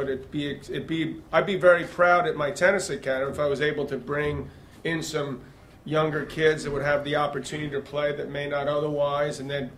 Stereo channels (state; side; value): identical; both; correlation 1.00